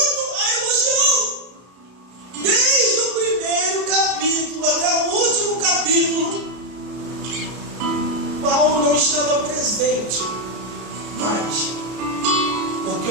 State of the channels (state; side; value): late; left; 33 ms